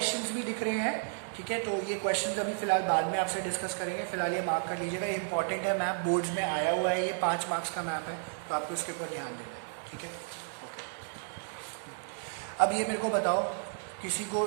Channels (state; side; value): silent; left; 56 dB below the other